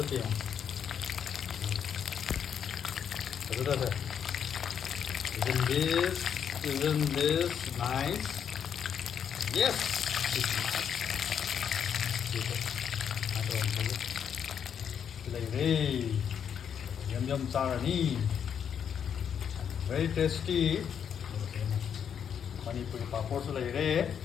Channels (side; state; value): right; quieter; 8.0 dB